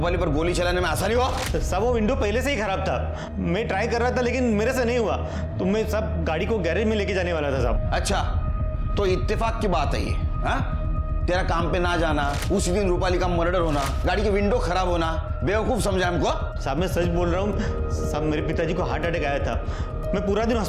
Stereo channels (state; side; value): identical; both; correlation 1.00